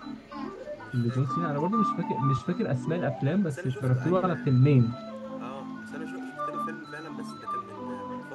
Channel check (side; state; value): both; identical; correlation 1.00